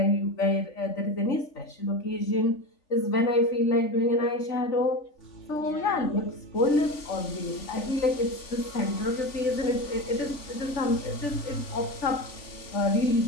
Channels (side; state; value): right; late; 3.5 ms